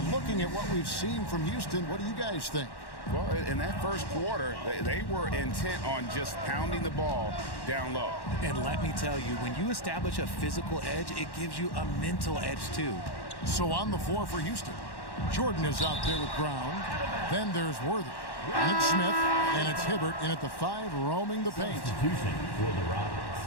looking at what we've seen from Houston, what do you guys think? Well, in that first quarter, they were intent on just pounding the ball down low. And let me tell you, when you establish a physical edge, it gives you a mental edge too. So on the floor for Houston, Jordan is out there with Brown. Then there's Worthy. And it's Smith, and it's Hibbert in at the 5, roaming the paint. Substitution for the Rockets.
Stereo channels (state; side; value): late; right; 1.1 ms